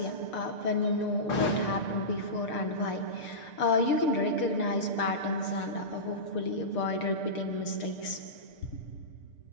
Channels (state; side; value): late; right; 6.7 ms